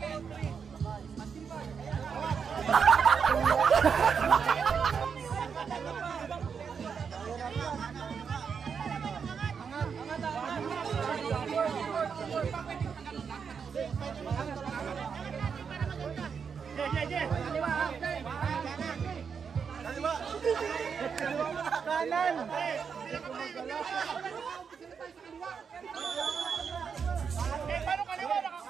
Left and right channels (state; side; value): quieter; left; 6.4 dB